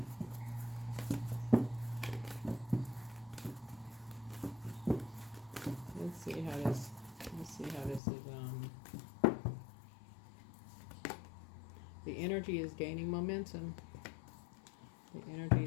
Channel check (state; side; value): drops out; right; at 8.0 s